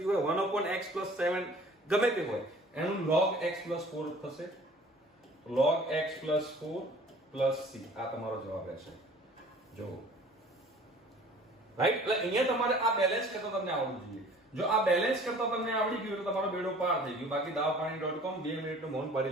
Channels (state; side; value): normal; both; correlation 0.50